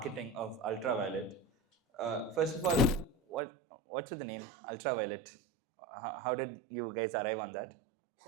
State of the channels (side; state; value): left; drops out; at 3.4 s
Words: of Ultraviolet. First of all, what's with the name Ultraviolet? How did you guys arrive on that?